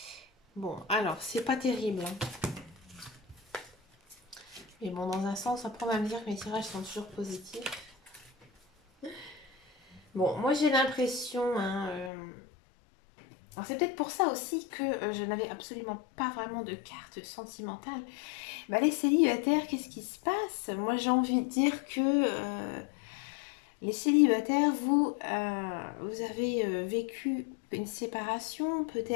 Bon, alors, c'est pas terrible. Hein. Mais bon, dans un sens, après, on va me dire que mes tirages sont toujours positifs. Bon, moi, j'ai l'impression... Hein, alors, c'est peut-être pour ça aussi que je n'avais absolument pas vraiment de carte sentimentale. Bah, les célibataires, qu'est-ce qui se passe? Moi, j'ai envie de dire que les célibataires, vous avez vécu une séparation,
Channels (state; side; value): drops out; right; at 12.1 s